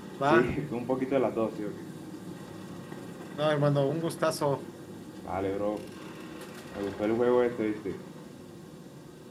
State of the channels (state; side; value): identical; both; correlation 1.00